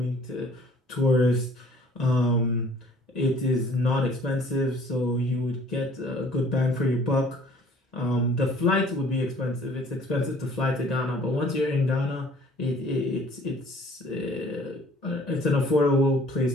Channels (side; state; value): both; normal; correlation 0.54